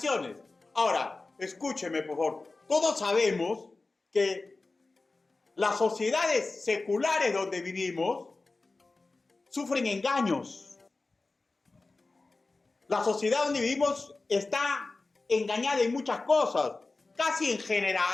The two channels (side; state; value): right; quieter; 3.5 dB